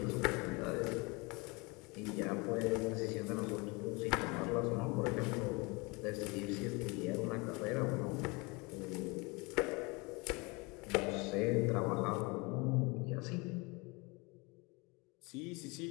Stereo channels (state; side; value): quieter; right; 27.2 dB